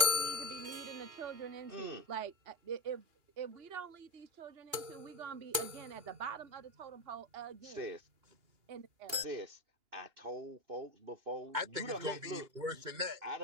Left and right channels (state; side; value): late; left; 2.8 ms